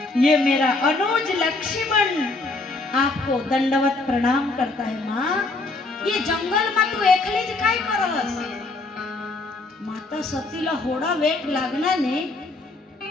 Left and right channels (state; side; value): quieter; right; 3.3 dB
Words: ये मेरा अनुज लक्ष्मण आपको दंडवत प्रणाम करता है माँ। ये जंगल में तू एकली ज काय करस? माता सतीला होड़ा वेट लागना ने